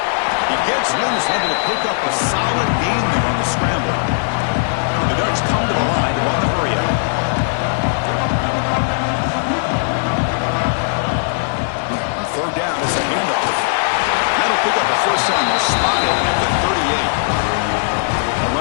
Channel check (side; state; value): right; silent; 56 dB below the other